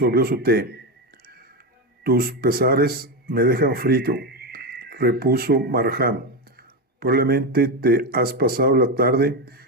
su té. Tus pesares me dejan frito, repuso Markham. Probablemente te has pasado la tarde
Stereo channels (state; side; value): normal; both; correlation 0.13